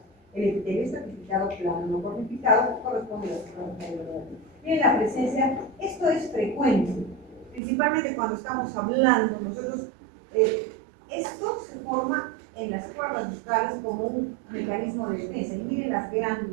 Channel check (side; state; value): left; drops out; at 7.6 s